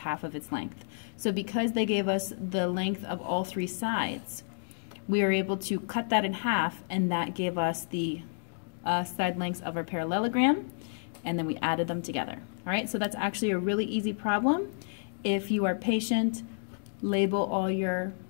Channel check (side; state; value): right; silent; digital silence